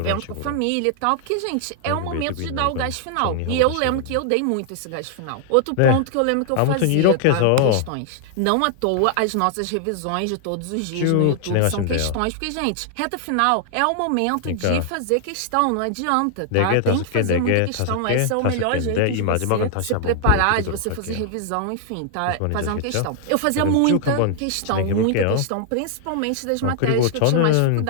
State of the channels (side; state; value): both; different; correlation 0.00